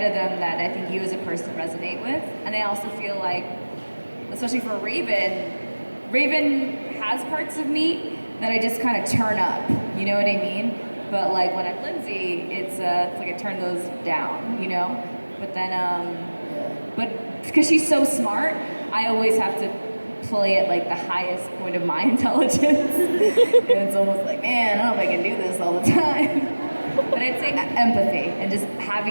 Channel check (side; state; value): both; inverted; correlation -1.00